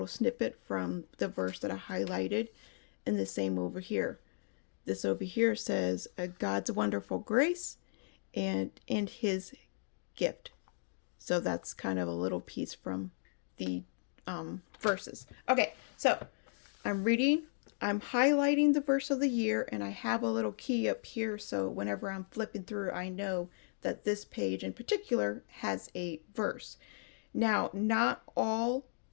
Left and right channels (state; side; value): silent; right; digital silence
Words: snippet from the verse that I highlighted. And the same over here. This over here says God's wonderful grace and his gift. So that's kind of a little piece from the verses. Okay, so I'm reading, I'm highlighting the verse of the year, and I have a little key up here. So whenever I'm flipping through, I know that this page in particular has a verse. Now, not all